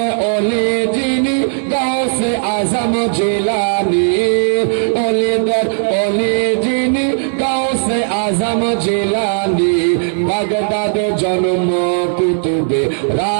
ওলি যিনি গাউসে আজম জিলানী, ওলি দর ওলি যিনি গাউসে আজম জিলানী, বাগদাদ জন্ম কুতুবে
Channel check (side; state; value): left; silent; 68 dB below the other